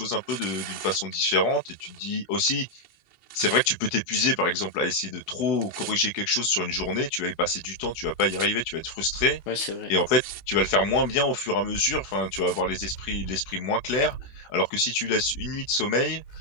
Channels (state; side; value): late; right; 16 ms